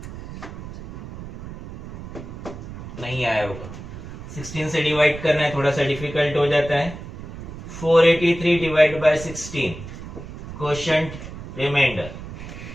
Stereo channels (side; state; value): right; noise; rumble, 12 dB below the sound